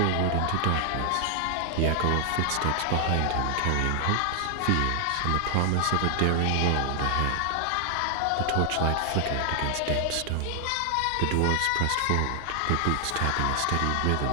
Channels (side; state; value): both; different; correlation 0.00